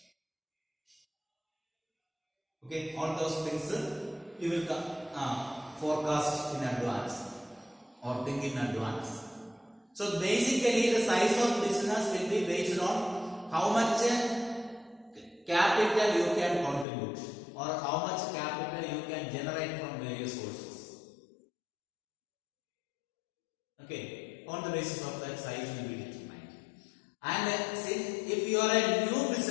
Okay, all those things you will forecast in advance or think in advance. So basically the size of business will be based on how much capital you can contribute, or how much capital you can generate from various sources. Okay, on the basis of that, size will be determined. And since if you are a new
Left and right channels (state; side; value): drops out; right; at 16.9 s